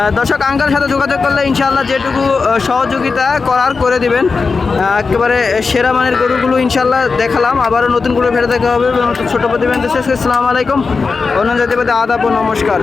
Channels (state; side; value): quieter; right; 4.6 dB